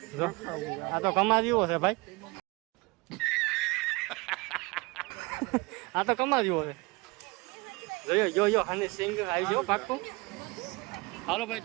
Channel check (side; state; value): left; quieter; 25.2 dB